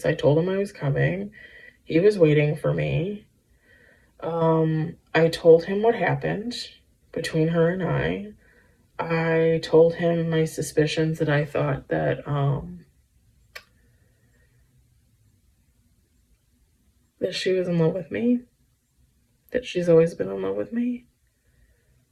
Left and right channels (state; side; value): identical; both; correlation 1.00